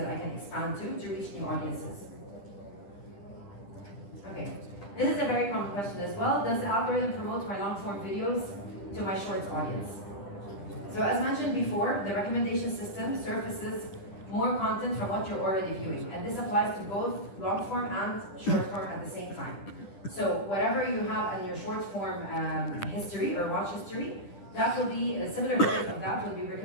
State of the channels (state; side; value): late; right; 10 ms